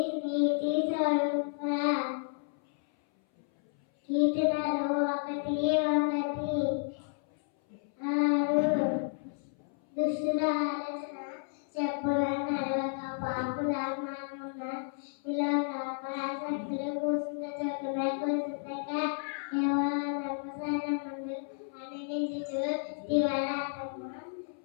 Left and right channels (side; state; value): right; silent; 57 dB below the other